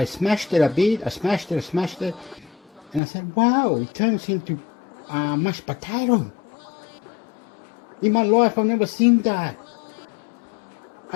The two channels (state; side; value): drops out; right; at 3.0 s